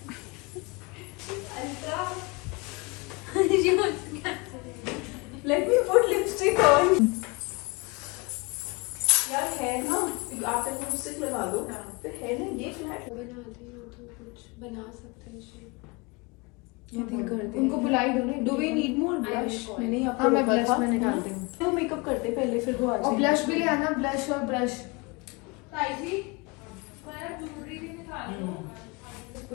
Let me put lipstick on. यार है ना आप एक lipstick लगा दो फिर है ना ये फ्लैट बनाते हो तो कुछ बना सकते हैं शेप उनको बुलाई दो ना do we need more blush मैंने यहाँ हाँ मैं ब्लश में निकालती हूँ तो मेकअप करते पहले फिर वो आ और ब्लश भी ले आना ब्लश और ब्रश जाएगी ज्वेलरी भी निकाल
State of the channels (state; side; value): quieter; right; 27.6 dB